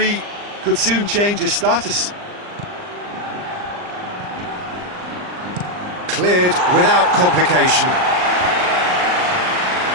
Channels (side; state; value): left; late; 39 ms